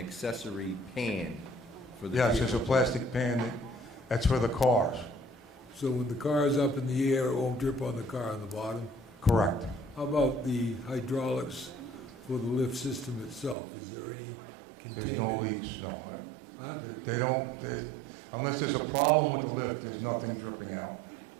pan for the vehicle. Yes, there's a plastic pan that's for the cars. So when the car is up in the air, it won't drip on the car on the bottom? Correct. How about the hydraulics for the lift system itself? Is there any containment? There's no leaks, no. Huh? They don't, unless there's a problem with the lift, there's nothing dripping out.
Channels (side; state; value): left; drops out; at 13.6 s